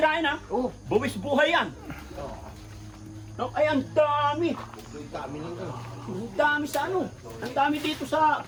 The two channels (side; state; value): both; identical; correlation 1.00